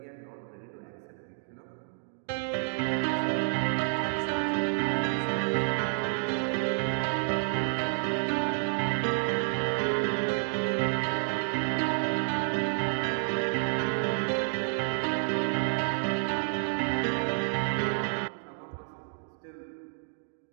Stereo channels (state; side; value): silent; left; digital silence